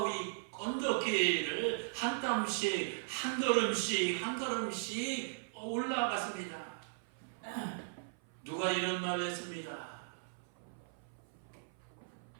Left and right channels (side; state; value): left; silent; 53 dB below the other